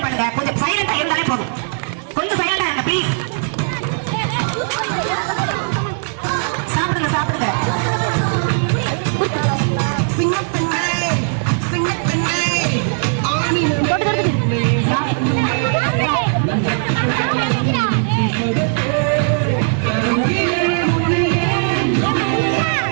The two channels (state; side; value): silent; left; digital silence